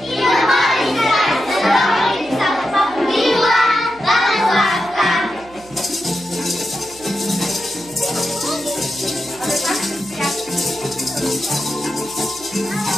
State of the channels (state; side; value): noise; right; hum, 24 dB below the sound